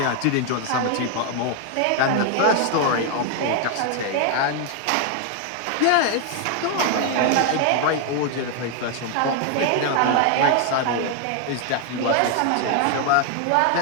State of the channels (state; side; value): different; both; correlation 0.00